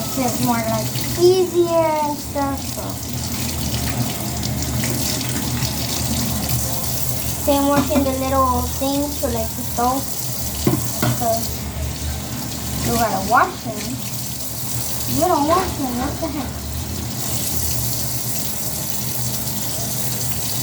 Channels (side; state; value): both; identical; correlation 1.00